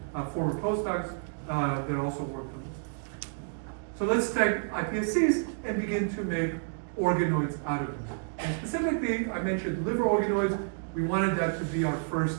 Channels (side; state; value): left; silent; digital silence